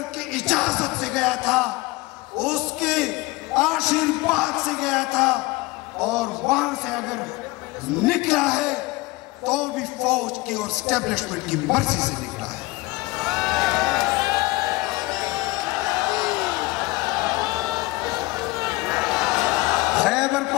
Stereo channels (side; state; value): right; quieter; 21.9 dB